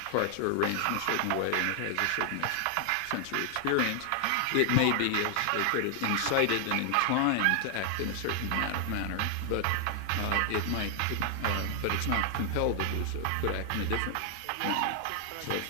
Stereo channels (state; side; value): different; both; correlation 0.00